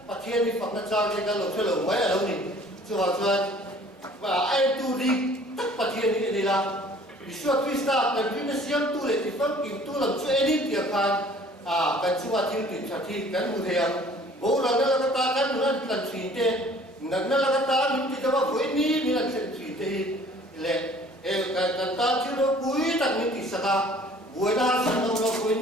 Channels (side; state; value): both; normal; correlation 0.53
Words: bà thiên thì phật nó cho cái lộ chơi lộ mấy ở đâu nhỉ chưa vào chưa và ai tu đi tất bà thiên như thế là vì suốt Krista cần vì nó siam tu lệ thì phân kim tu làm cho edit tiệc khan cần chúng ta thiếu thì chả thi cần một thề bố là nó là cái ta cần nó cần chỉ thế nó là cái ta mình thì đâu với ní mình là chỉ thì lệ cái ta chứ nó cuối tặng mình thì sao buổi đó sang đâu nó với